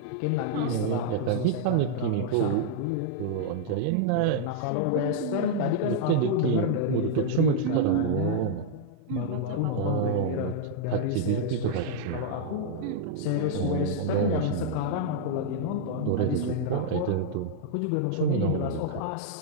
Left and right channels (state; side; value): different; both; correlation -0.01